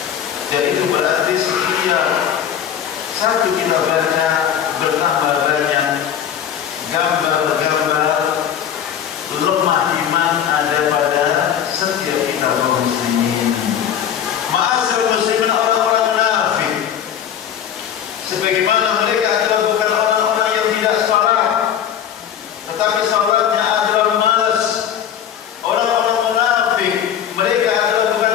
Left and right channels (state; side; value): quieter; right; 9.3 dB